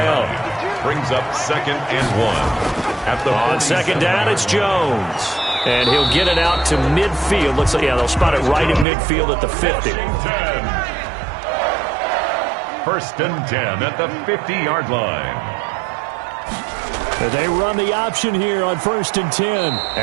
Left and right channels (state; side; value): drops out; left; at 8.8 s